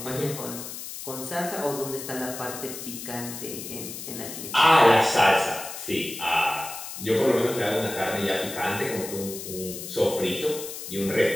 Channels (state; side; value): noise; left; hiss, 9 dB below the sound